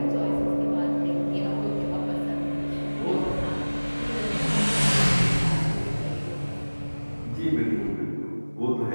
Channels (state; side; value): inverted; both; correlation -1.00